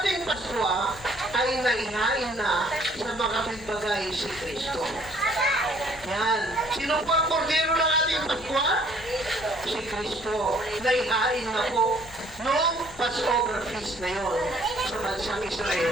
Paskwa ay naihain na sa mga bagay si Kristo. Yan. Sino po ang kordero ng ating Paskwa? Si Kristo. Naihain na po noong Passover feast na yon sa bansang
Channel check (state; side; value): normal; both; correlation 0.60